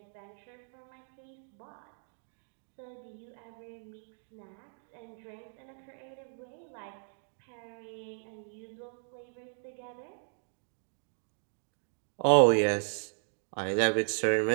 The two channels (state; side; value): silent; left; digital silence